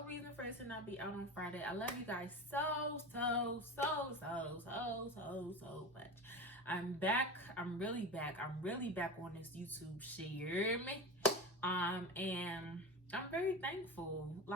reason for it to not be out on Friday. I love you guys so much. I'm back. I'm really back. I'm really back on this YouTube shit. You hear me? And I'm very thankful.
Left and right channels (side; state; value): both; normal; correlation 0.27